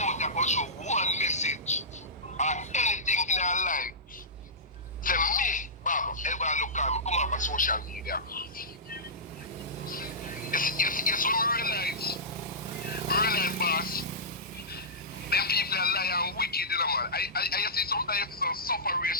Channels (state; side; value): normal; both; correlation -0.17